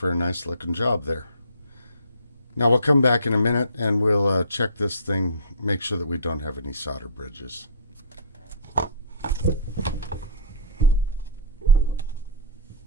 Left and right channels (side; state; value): both; inverted; correlation -0.37